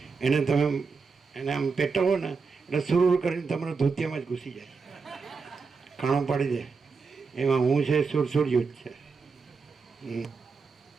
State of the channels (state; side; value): quieter; left; 4.9 dB